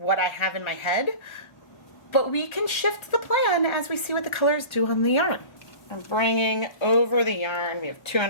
I have in my head, but we can shift the plan as we see what the colors do on the yarn. I'm bringing over the yarn. We have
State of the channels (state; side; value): late; right; 1.4 ms